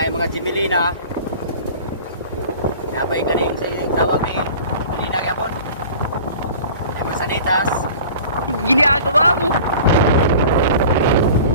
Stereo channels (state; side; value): inverted; both; correlation -0.42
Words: yung mga Jimelina. Napay galing tawag ni Jimelina gapon. Yung mga sanitas. Ginagawa mo.